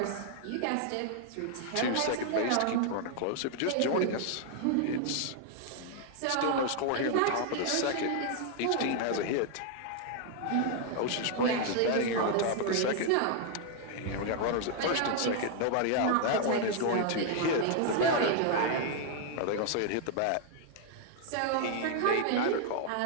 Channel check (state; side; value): different; both; correlation 0.00